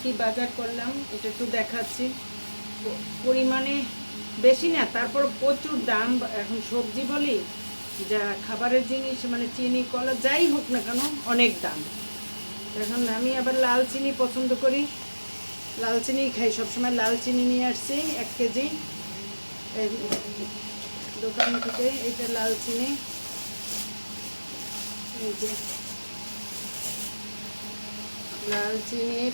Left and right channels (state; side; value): inverted; both; correlation -1.00